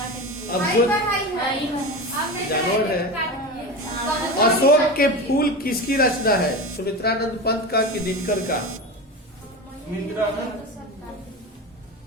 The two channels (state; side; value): normal; both; correlation 0.25